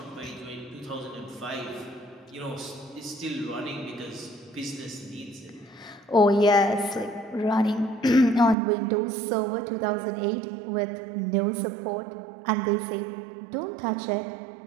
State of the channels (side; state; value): left; drops out; at 8.6 s